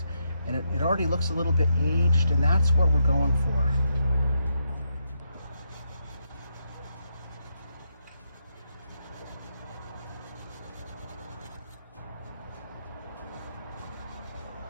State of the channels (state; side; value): inverted; both; correlation -0.80